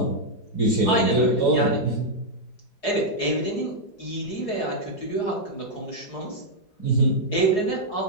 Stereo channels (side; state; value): right; late; 4.8 ms